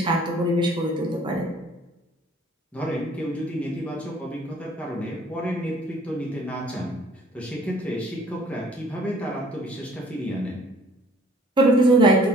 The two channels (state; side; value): normal; both; correlation 0.56